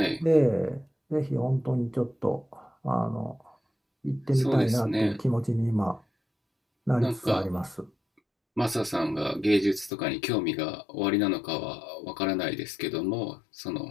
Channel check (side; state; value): right; drops out; at 9.9 s